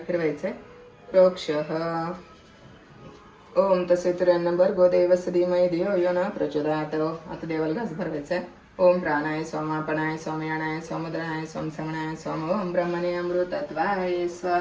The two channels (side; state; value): both; identical; correlation 1.00